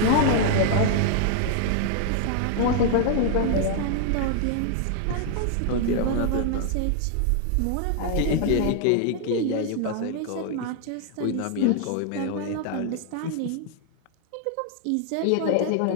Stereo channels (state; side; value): different; both; correlation 0.00